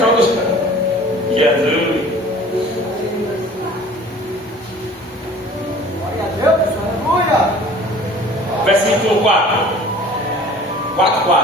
Jesus. Versículo 4.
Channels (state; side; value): normal; both; correlation 0.47